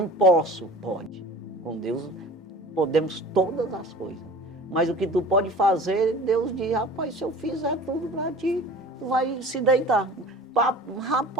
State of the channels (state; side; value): normal; both; correlation 0.41